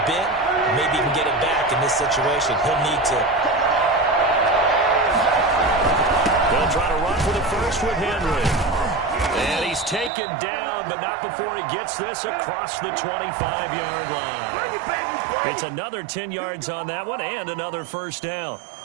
bit? Maybe he can get it back in this situation. He'll need to. They'll try to run for the first with Henry. And he's taken down, but not before he gets this across the 25-yard line. It's another 10 yards on that one and another first down.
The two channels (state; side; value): drops out; left; at 10.1 s